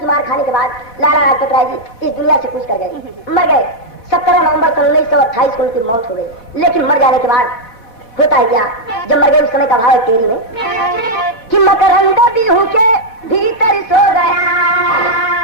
मार खाने के बाद लाला लाजपत राय जी इस दुनिया से कूच कर गए, मर गए। 17 नवंबर 1928 को उनकी मौत हो गई। लेकिन मर जाने के बाद होता है क्या, जब मर गए उस समय का भाव है तेरी में कि मकरंद बिहू के भीतर सो गया,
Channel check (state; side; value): late; right; 4.1 ms